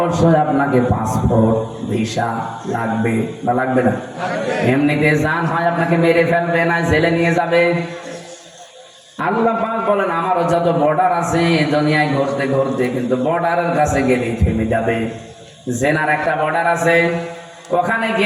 আপনাকে পাসপোর্ট ভিসা লাগবে বা লাগবে না? এমনিতে যান, হয় আপনাকে মেরে ফেলবে, না জেলে নিয়ে যাবে। আল্লাহ পাক বলেন আমারও যত বর্ডার আছে দুনিয়ায় ঘুরতে ঘুরতে, কিন্তু বর্ডারের কাছে গেলেই থেমে যাবে। জেনার একটা বর্ডার আছে, ওখানে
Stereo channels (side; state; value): both; identical; correlation 1.00